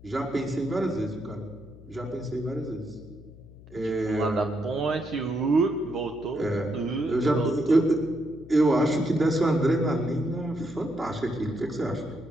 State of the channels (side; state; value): left; noise; hum, 20 dB below the sound